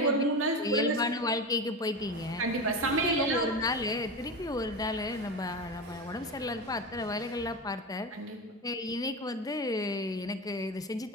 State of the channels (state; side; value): normal; both; correlation 0.22